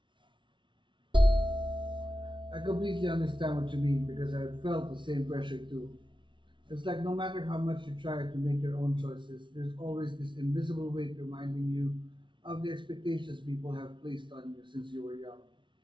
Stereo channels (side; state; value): left; late; 0.24 ms